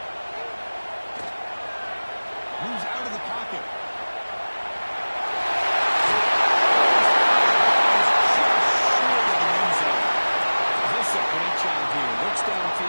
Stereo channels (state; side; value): inverted; both; correlation -1.00